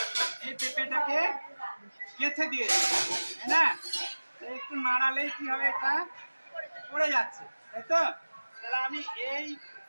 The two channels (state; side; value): inverted; both; correlation -1.00